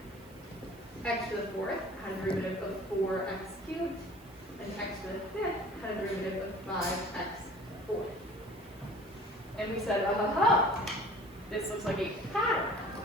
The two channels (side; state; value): right; noise; hiss, 25 dB below the sound